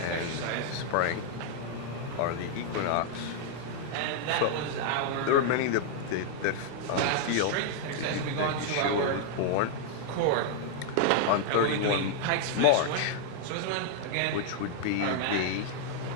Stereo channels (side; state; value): both; different; correlation -0.01